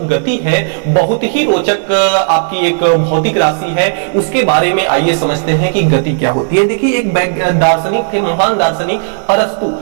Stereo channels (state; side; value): silent; left; digital silence